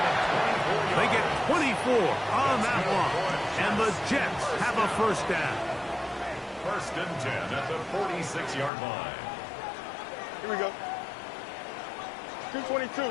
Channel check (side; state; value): right; drops out; at 8.7 s